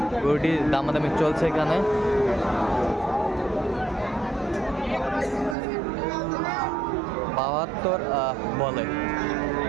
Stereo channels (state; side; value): drops out; left; at 5.6 s